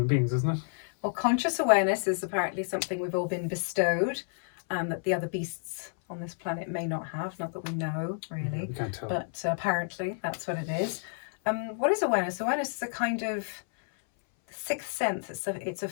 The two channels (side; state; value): right; silent; 58 dB below the other